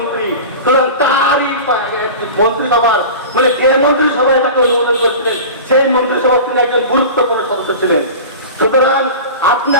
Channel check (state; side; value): inverted; both; correlation -0.33